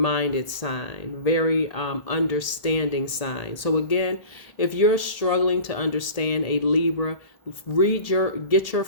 sign, very understanding sign. So again, if you're struggling to understand a Libra, get your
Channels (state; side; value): late; right; 1.8 ms